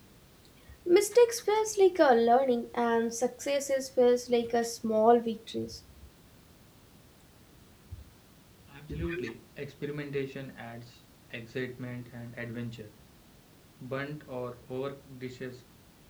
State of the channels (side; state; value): both; identical; correlation 1.00